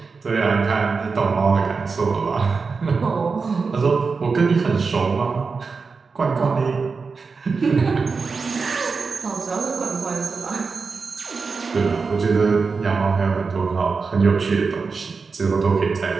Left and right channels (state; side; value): quieter; left; 4.7 dB